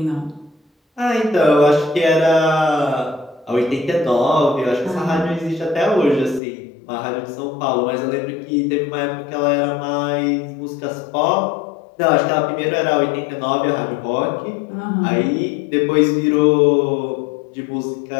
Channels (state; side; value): drops out; right; at 6.4 s